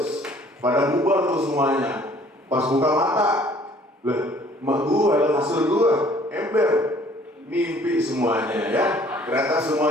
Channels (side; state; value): both; normal; correlation 0.56